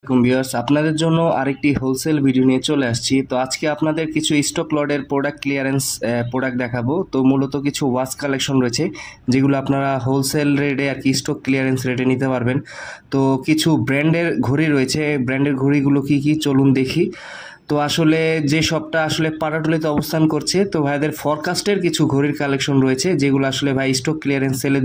আসসালামাইকুম ভিউয়ার্স, আপনাদের জন্য আরেকটি হোলসেল ভিডিও নিয়ে চলে আসছি। তো আজকে আপনাদের কিছু স্টক লটের প্রোডাক্ট ক্লিয়ারেন্স প্রোডাক্ট দেখাবো। তো মূলত কিছু ওয়াচ কালেকশন রয়েছে যেগুলো আপনারা হোলসেল রেটে আর কি স্টক ক্লিয়ারেন্স রেটে নিতে পারবেন। তো কিছু ব্র্যান্ডের ঘড়ি রয়েছে, ব্র্যান্ডের ঘড়িগুলো কি কি চলুন দেখি। তো আসলে যে শপটা আসলে পাটাটুলিতে অবস্থান করছে, তো ভাইদের ফরকাস্টের কিছু ঘড়ির কালেকশন রয়েছে যেগুলো আসলে ভাই স্টক ক্লিয়ারেন্স সেলে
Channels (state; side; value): identical; both; correlation 1.00